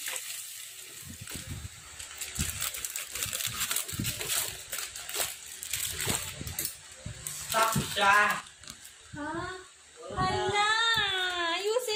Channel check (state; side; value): identical; both; correlation 1.00